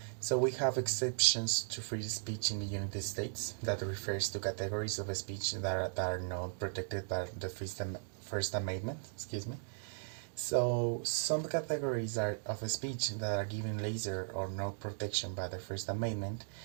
So we have exceptions to free speech in the United States that refers to categories of speech that are not protected by the First Amendment, excuse me. So, some categories of speech that are given lesser or no protection by the First Amendment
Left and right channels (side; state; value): left; silent; digital silence